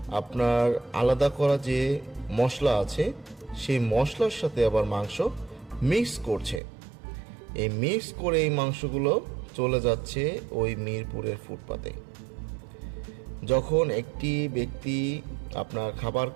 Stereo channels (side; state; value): left; drops out; at 6.6 s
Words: আপনার আলাদা করা যে মশলা আছে সেই মশলার সাথে আবার মাংস মিক্স করছে। এই মিক্স করে এই মাংসগুলো চলে যাচ্ছে ওই মিরপুরের ফুটপাতে। যখন একটি ব্যক্তি আপনার খাবার